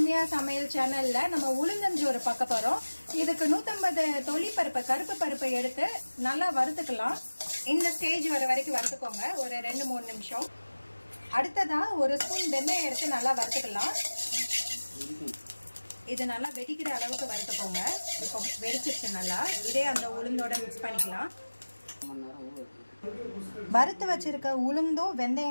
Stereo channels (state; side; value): inverted; both; correlation -1.00